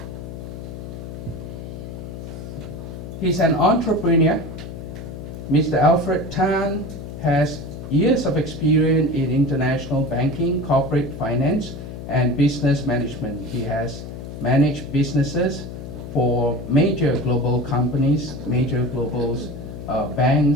He's an entrepreneur. Mr. Alfred Tan has years of experience in international banking, corporate finance, and business management. He has managed businesses for major global companies, major global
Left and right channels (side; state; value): left; noise; hum, 10 dB below the sound